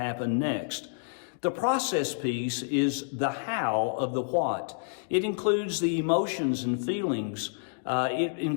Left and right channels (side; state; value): right; silent; digital silence